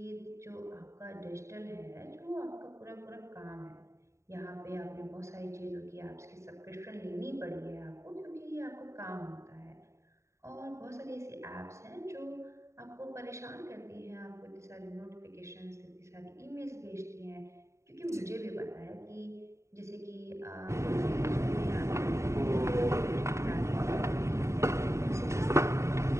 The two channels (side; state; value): left; late; 0.14 ms